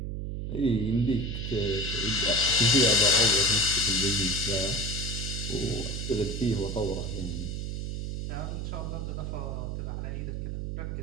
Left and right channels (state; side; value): noise; right; hum, 4 dB below the sound